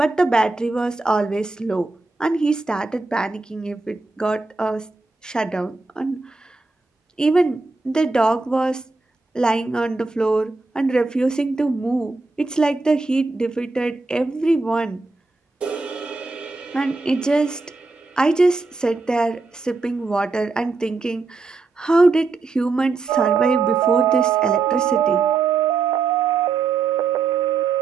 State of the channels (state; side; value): quieter; left; 3.9 dB